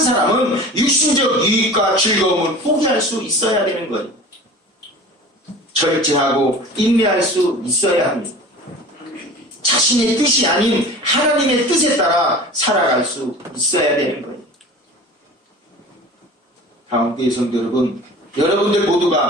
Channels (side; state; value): both; normal; correlation 0.39